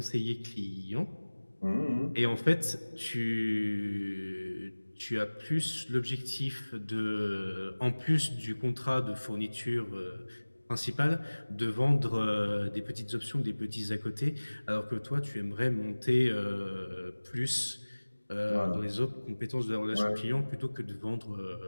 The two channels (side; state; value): both; inverted; correlation -1.00